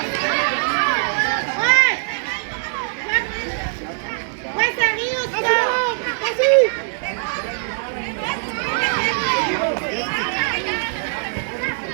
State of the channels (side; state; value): left; silent; 64 dB below the other